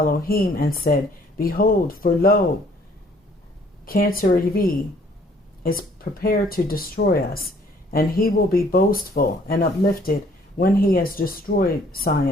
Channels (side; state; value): both; normal; correlation 0.60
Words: and said, Behold, for lo, Cancer is prepared to destroy us, and he will be boastful and uplifted when he has destroyed